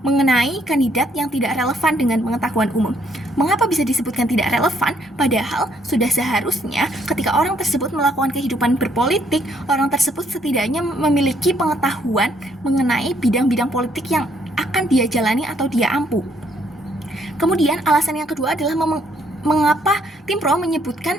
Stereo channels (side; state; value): both; normal; correlation 0.69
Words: mengenai kandidat yang tidak relevan dengan pengetahuan umum. Mengapa bisa disebutkan tidak relevan? Padahal sudah seharusnya ketika orang tersebut melakukan kehidupan berpolitik, orang tersebut setidaknya memiliki pengetahuan mengenai bidang-bidang politik yang akan dia jalani atau dia ampuh. Kemudian alasan yang kedua adalah mengapa tim pro